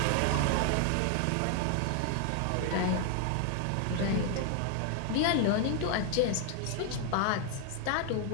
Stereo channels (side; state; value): both; different; correlation 0.00